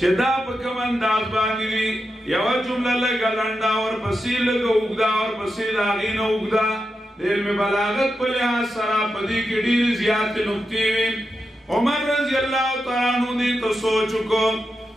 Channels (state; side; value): normal; both; correlation 0.88